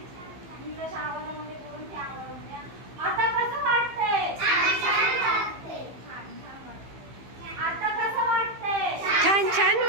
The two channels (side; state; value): left; late; 15 ms